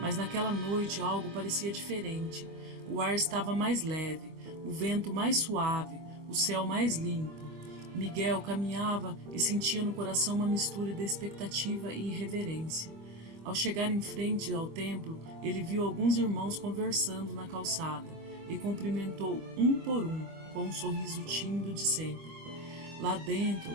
naquela noite algo parecia diferente. O ar estava mais leve, o vento mais suave, o céu mais limpo. Miguel caminhava e sentia no coração uma mistura de expectativa e irreverência. Ao chegar em frente ao templo, ele viu alguns irmãos conversando na calçada e cumprimentou um por um, com um sorriso tímido de sempre. Lá dentro,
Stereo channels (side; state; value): left; late; 25 ms